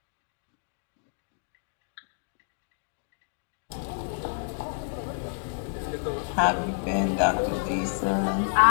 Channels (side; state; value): right; silent; digital silence